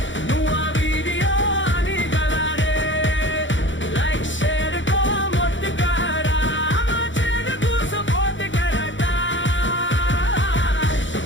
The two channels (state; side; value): late; right; 0.55 ms